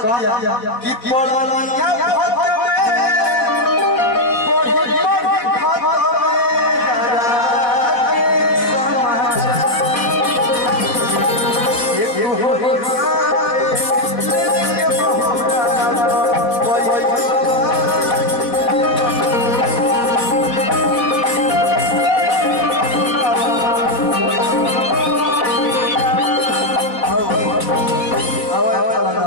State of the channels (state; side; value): late; right; 4.1 ms